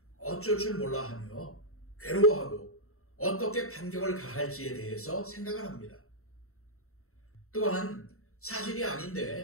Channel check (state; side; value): late; right; 0.63 ms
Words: 어쩔 줄 몰라 하며 괴로워하고 어떻게 반격을 가할지에 대해서 생각을 합니다. 또한 사실이